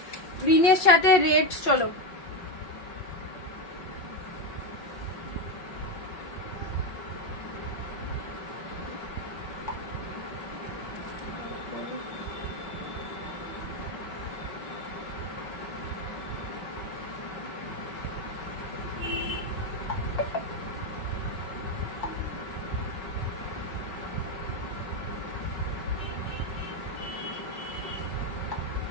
গ্রিনের সাথে রেড। চলো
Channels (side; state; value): right; late; 5.5 ms